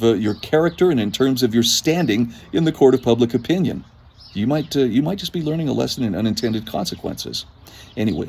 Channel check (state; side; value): identical; both; correlation 1.00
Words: your character and in terms of your standing in the court of public opinion? You might just be learning a lesson in unintended consequences.